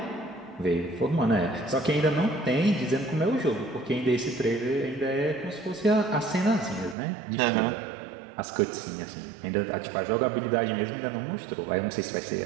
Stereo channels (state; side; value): drops out; left; at 7.0 s